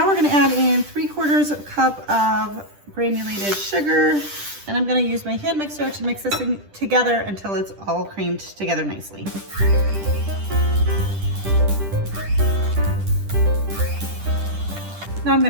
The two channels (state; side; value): late; left; 10 ms